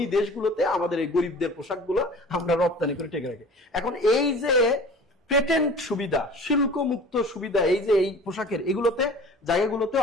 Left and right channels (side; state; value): both; normal; correlation 0.43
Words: দেশগুলোতে আমাদের এই গরিবদের পোশাকগুলো আমরা রপ্তানি করে টেকে রাখি। এখন এই যে পেটেন্ট সুবিধা, শুল্ক মুক্ত সুবিধা, এই যে এই পোশাকের এগুলোতে জায়গাগুলোতে